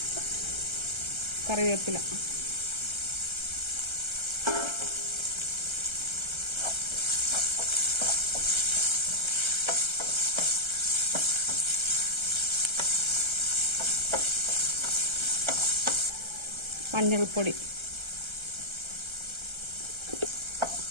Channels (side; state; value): left; late; 1.3 ms